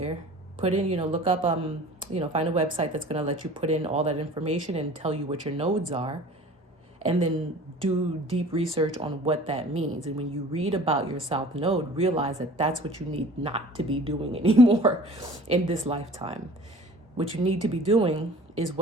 Put in, look up, find a website that's going to let you put in all that information and tell you what your nodes are. And then do deep research on what that means. And when you read about your South Node, realize that that's what you need not to be doing anymore in this lifetime. What you need to be doing is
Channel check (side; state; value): both; normal; correlation 0.45